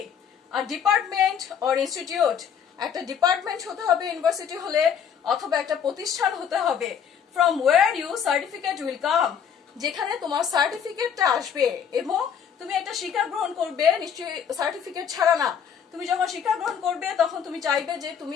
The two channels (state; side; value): quieter; right; 7.7 dB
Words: আর ডিপার্টমেন্ট অর ইনস্টিটিউট, একটা ডিপার্টমেন্ট হতে হবে ইউনিভার্সিটি হলে, অথবা একটা প্রতিষ্ঠান হতে হবে। From where you certificate will come, যেখানে তোমার সার্টিফিকেটটা আসবে এবং তুমি একটা শিক্ষা গ্রহণ করবে, নিশ্চয়ই সার্টিফিকেট ছাড়া না। তুমি যখন শিক্ষা গ্রহণ করবে তখন তুমি চাইবে যে